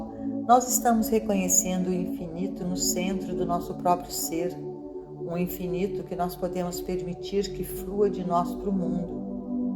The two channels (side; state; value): both; identical; correlation 1.00